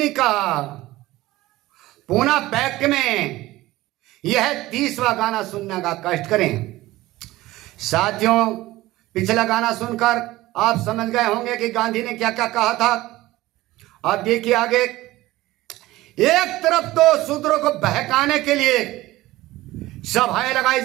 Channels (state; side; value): quieter; left; 17.6 dB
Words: का पूना पैक्ट में यह 30वां गाना सुनने का कष्ट करें। साथियों, पिछला गाना सुनकर आप समझ गए होंगे कि गांधी ने क्या क्या कहा था। अब देखिए आगे। एक तरफ तो शूद्रों को बहकाने के लिए सभाएं लगाई